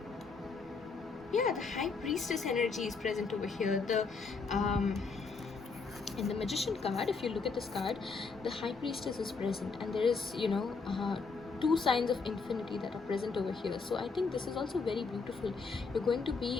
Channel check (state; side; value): quieter; right; 4.6 dB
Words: yeah, the high priestess energy is present over here. The in the magician card, if you look at this card, the high priestess is present, and there is two signs of infinity that are present over here. So I think this is also very beautiful. You're going to be